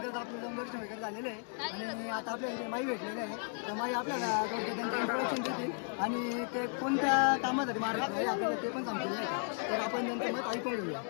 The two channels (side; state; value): right; silent; 55 dB below the other